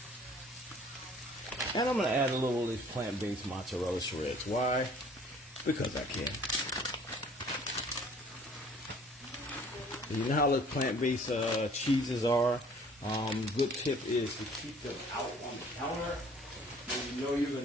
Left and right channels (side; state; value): both; normal; correlation 0.53